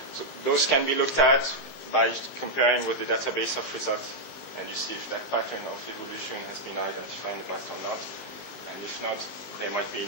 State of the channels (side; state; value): right; late; 15 ms